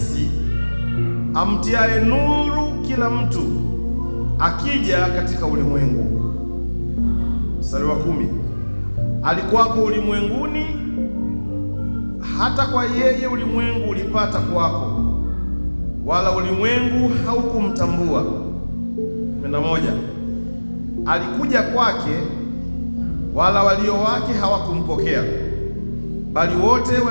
amtiaye nuru kila mtu akija katika ulimwengu. Mstari wa 10. Alikuwako ulimwenguni, hata kwa yeye ulimwengu ulipata kuwako, wala ulimwengu haukumtambua. 11. Alikuja kwake, wala walio wake hawakumpokea, bali wote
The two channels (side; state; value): both; inverted; correlation -1.00